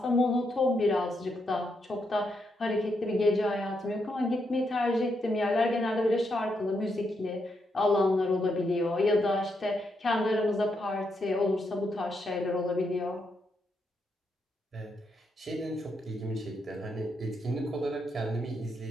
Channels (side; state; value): both; normal; correlation 0.80